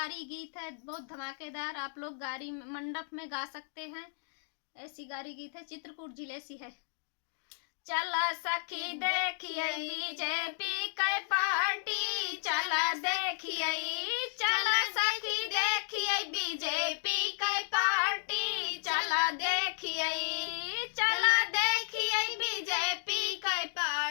गीत है, बहुत धमाकेदार। आप लोग गारी मंडप में गा सकते हैं। ऐसी गारी गीत है, चित्रकूट जिले से है। चला सखी देखिए बीजेपी के पार्टी, चला देखिए, चला सखी देखिए बीजेपी के पार्टी, चला देखिए, चला देखिए बीजेपी के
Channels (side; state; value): right; silent; digital silence